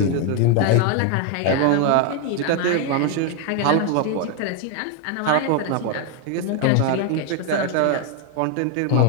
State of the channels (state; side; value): different; both; correlation 0.01